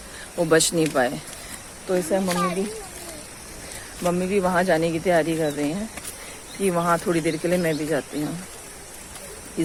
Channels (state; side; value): identical; both; correlation 1.00